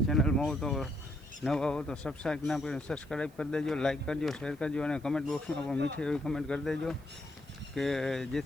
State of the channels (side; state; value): right; noise; hiss, 28 dB below the sound